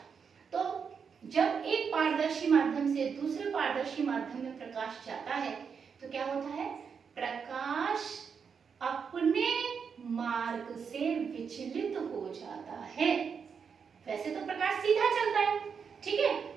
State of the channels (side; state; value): left; quieter; 6.3 dB